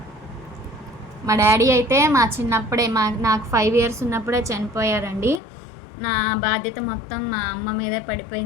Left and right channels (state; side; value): drops out; right; at 5.4 s